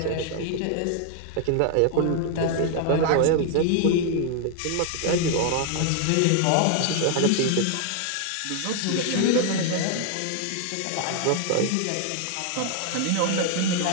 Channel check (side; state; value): both; different; correlation 0.00